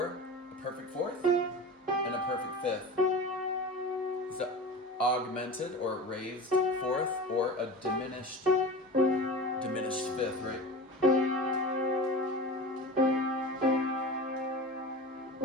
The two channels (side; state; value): both; normal; correlation 0.32